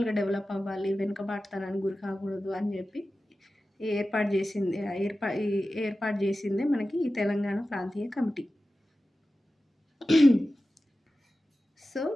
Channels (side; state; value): both; normal; correlation 0.94